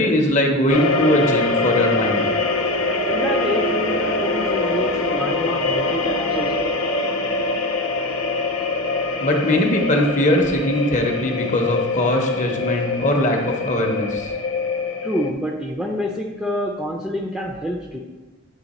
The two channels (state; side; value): normal; both; correlation 0.26